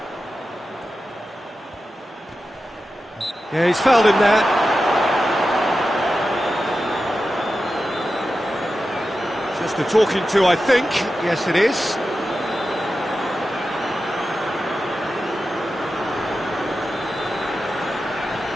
Yeah, he's fouled him there. Just a talking to, I think. Yes, it is.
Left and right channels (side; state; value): both; normal; correlation 0.92